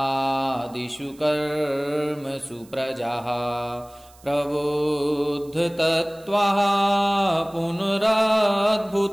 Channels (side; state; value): right; noise; hiss, 26 dB below the sound